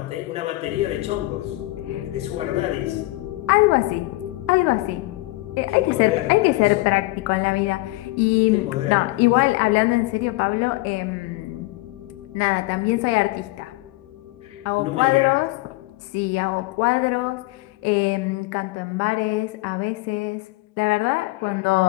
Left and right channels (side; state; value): right; quieter; 20.5 dB